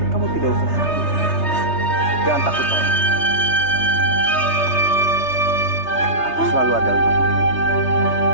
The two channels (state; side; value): late; right; 3.3 ms